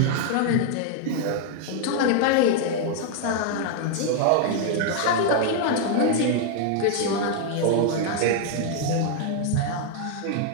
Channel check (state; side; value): different; both; correlation 0.00